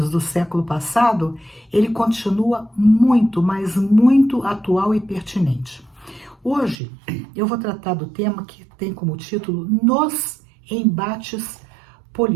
do século passado, ele continua muito, mas muito atual e pertinente. Hoje eu vou tratar do tema que tem como título Nos Embates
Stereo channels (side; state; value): left; drops out; at 6.8 s